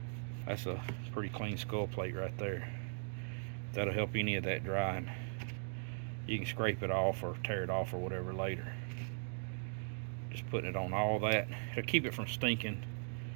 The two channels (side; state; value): left; silent; digital silence